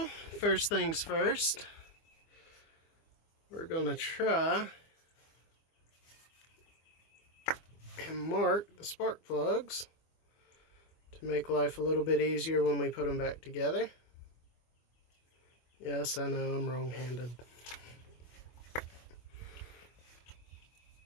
first things first, we're going to try and mark the spark plugs to make life a little bit easier when we put them back together. Yes, I know I'm wrong-handed.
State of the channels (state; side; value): late; right; 24 ms